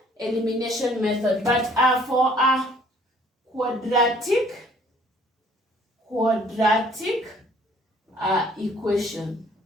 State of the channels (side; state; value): both; normal; correlation 0.58